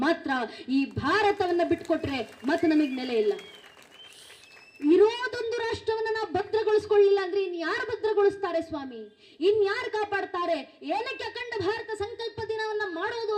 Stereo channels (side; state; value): both; identical; correlation 1.00